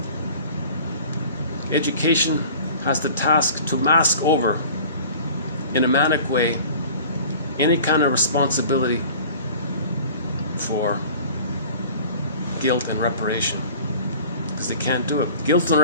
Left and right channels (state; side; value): inverted; both; correlation -0.44